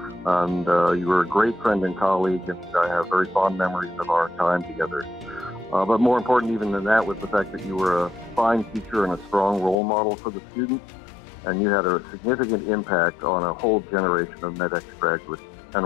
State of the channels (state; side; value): drops out; right; at 9.8 s